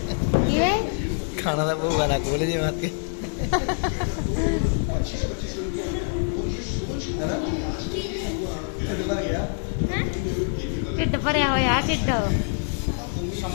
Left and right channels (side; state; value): right; silent; 62 dB below the other